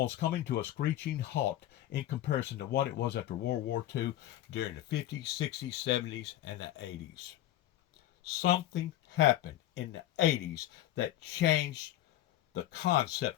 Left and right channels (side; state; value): right; quieter; 13.5 dB